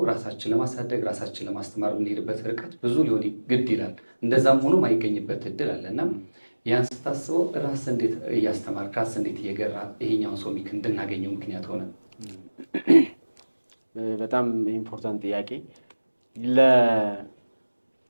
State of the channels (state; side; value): inverted; both; correlation -1.00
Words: ራሳችን ለማሳደግ ራሳችን ለማስተማር የምንሄድበት ርቀት ብዙ ሊሆን ግድ ይላል። እንደዛም ሆኖ ማይገኝበት እድል አለ እና ያን ስታስበው ራስ እንዴት እያስተማር ራስ እንዴት እየገራ ይሄኛውን ሶሚክ እንድናገኘው ምክንያት ሆነ? በጣም ኢምፖርታንት ጥያቄ።